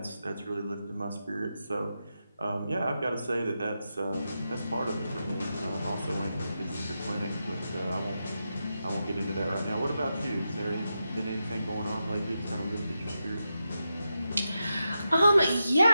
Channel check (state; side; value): inverted; both; correlation -0.88